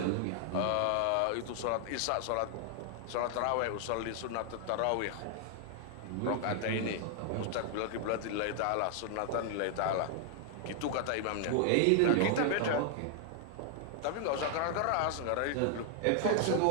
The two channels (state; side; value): different; both; correlation 0.00